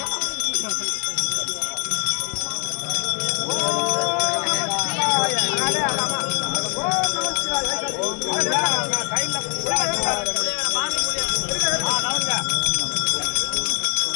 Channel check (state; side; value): quieter; right; 37.4 dB